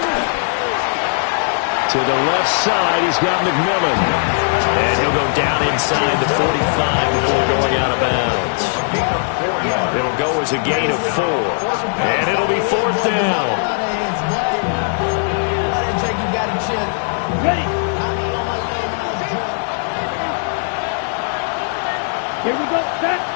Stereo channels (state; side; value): silent; right; digital silence